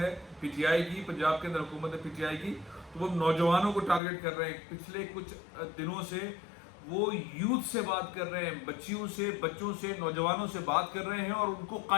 پی ٹی آئی کی، پنجاب کے اندر حکومت ہے پی ٹی آئی کی، تو وہ نوجوانوں کو ٹارگٹ کر رہے ہیں. پچھلے کچھ دنوں سے وہ یوتھ سے بات کر رہے ہیں، بچوں سے نوجوانوں سے بات کر رہے ہیں اور ان کو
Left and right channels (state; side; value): drops out; right; at 4.0 s